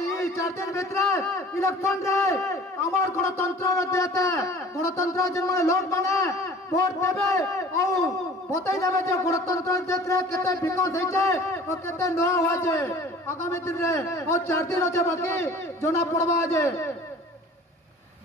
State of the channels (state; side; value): normal; both; correlation 0.46